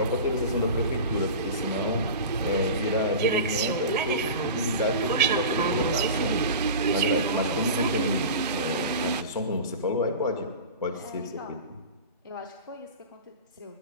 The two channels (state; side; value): inverted; both; correlation -0.31